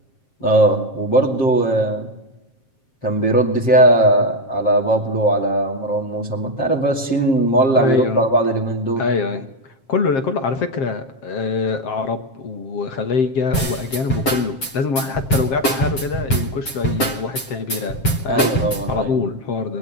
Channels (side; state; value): right; late; 7.5 ms